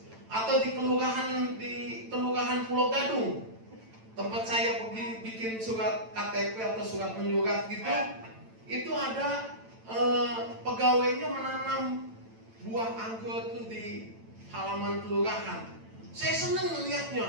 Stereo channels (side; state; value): left; late; 9.0 ms